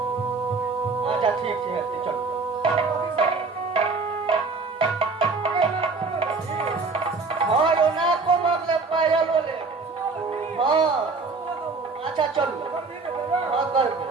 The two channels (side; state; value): left; quieter; 4.1 dB